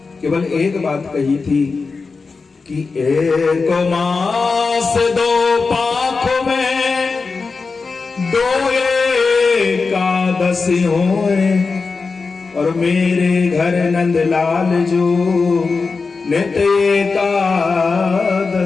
केवल एक बात कही थी कि 1 मास 2 पाख में 2 एकादशी होए, और मेरे घर नंदलाल जो नित्य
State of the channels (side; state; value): right; quieter; 4.4 dB